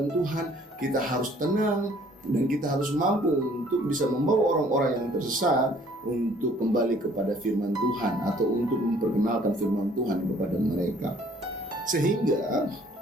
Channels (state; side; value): normal; both; correlation 0.58